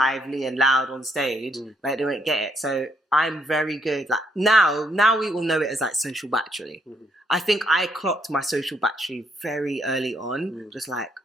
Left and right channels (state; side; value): normal; both; correlation 0.73